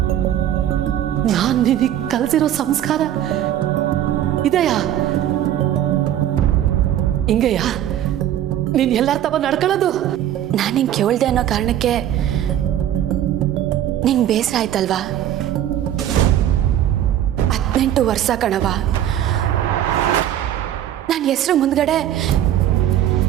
ನಾನ್ ನಿನಗೆ ಕಲ್ಸಿರೋ ಸಂಸ್ಕಾರ ಇದೆಯಾ? ಹಿಂಗೆಯಾ ನೀನ್ ಎಲ್ಲಾರ ತವ ನಡ್ಕೊಳ್ಳೋದು? ನಾನು ನಿಂಗೆ ಕೇಳ್ದೆ ಅನ್ನೋ ಕಾರಣಕ್ಕೆ ನಿಂಗೆ ಬೇಸರ ಆಯ್ತಲ್ವಾ? 18 ವರ್ಷ ಕಣವ, ನನ್ನ ಹೆಸರು ಮುಂದ್ಗಡೆ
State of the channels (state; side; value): quieter; left; 11.5 dB